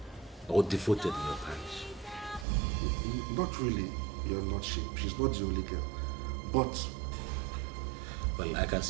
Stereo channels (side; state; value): left; drops out; at 2.5 s